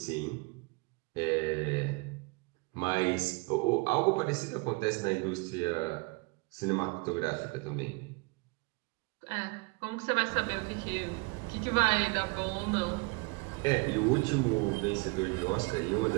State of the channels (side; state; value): left; quieter; 29.3 dB